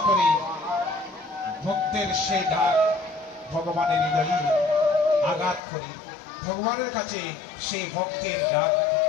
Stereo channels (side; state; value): right; drops out; at 5.6 s